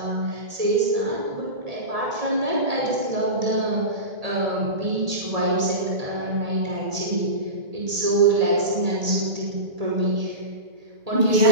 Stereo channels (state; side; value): late; left; 1.8 ms